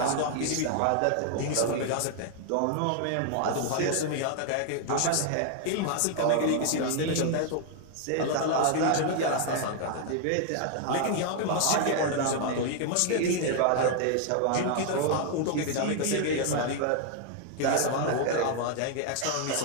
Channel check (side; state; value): both; different; correlation 0.00